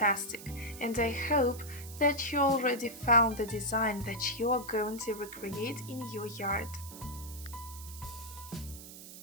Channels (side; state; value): right; noise; hiss, 14 dB below the sound